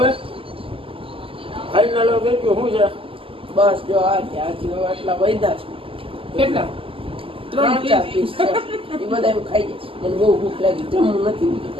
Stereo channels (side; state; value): left; late; 0.26 ms